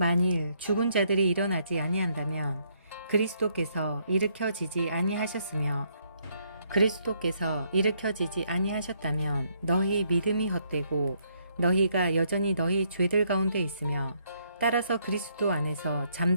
죽은 자들이 일어나지 아니한다면 그리스도께서 일으켜지지 아니하셨으며 그리스도께서 일으켜지지 아니하셨다면 너희 믿음이 헛되고 너희가 여전히 너희 죄들 가운데 있으며 따라서 그리스도 안에서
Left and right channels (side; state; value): both; inverted; correlation -0.72